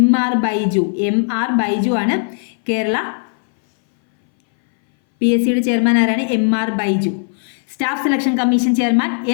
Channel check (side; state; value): right; silent; 62 dB below the other